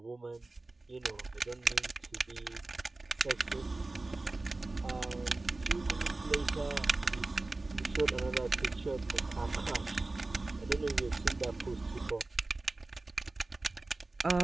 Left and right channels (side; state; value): left; quieter; 3.1 dB